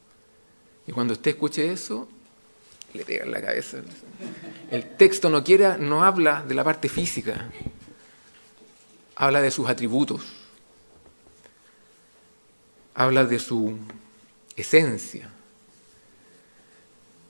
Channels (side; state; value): both; inverted; correlation -1.00